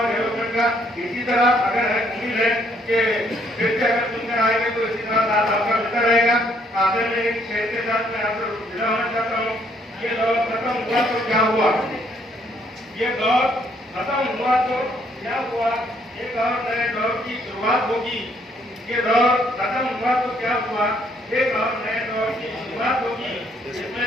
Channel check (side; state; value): both; normal; correlation 0.68